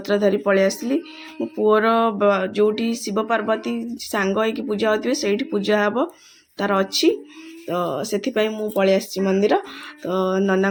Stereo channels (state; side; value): identical; both; correlation 1.00